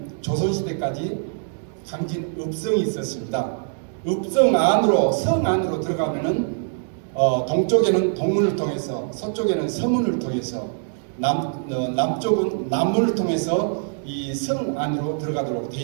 조선시대까지 강진 읍성이 있었습니다. 읍성 안으로, 성 안으로 들어가면은 동쪽에는 동문을 통해서, 서쪽에는 서문을 통해서, 남쪽은 남문을 통해서 이 성 안으로 들어가도록 돼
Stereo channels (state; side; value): silent; left; digital silence